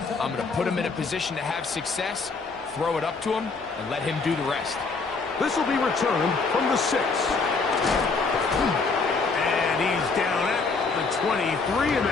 I'm going to put him in a position to have success, throw it up to him, and let him do the rest. This will be returned from the 6. And he's down at the 23, and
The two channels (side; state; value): right; quieter; 4.3 dB